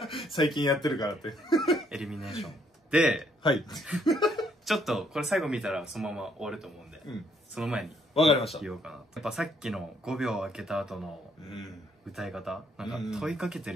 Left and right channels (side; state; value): both; normal; correlation 0.69